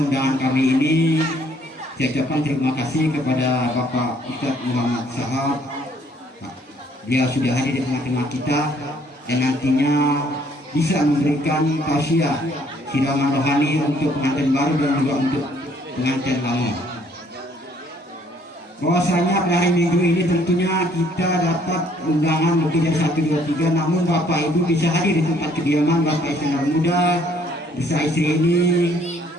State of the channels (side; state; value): both; normal; correlation 0.63